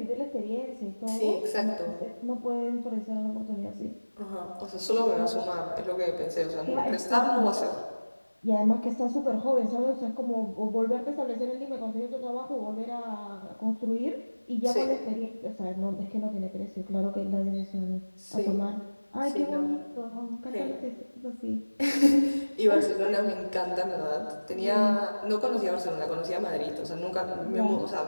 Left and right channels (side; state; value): both; inverted; correlation -1.00